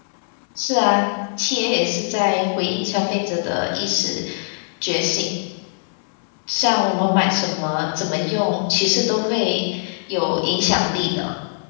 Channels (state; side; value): silent; right; digital silence